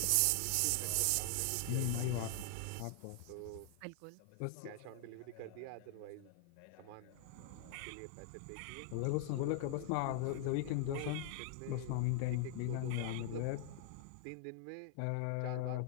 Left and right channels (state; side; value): different; both; correlation 0.00